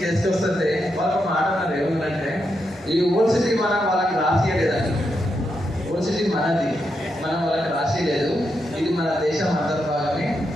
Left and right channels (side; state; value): both; normal; correlation 0.83